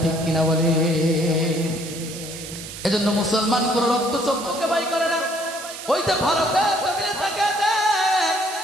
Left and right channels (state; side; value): noise; right; hiss, 11 dB below the sound